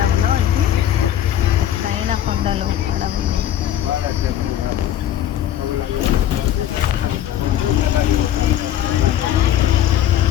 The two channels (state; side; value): quieter; right; 11.3 dB